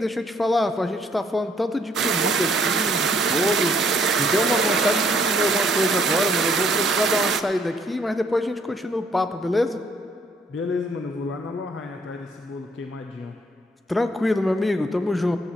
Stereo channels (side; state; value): both; normal; correlation 0.66